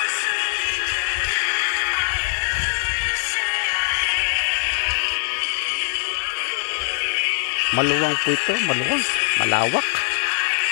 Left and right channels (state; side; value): silent; right; digital silence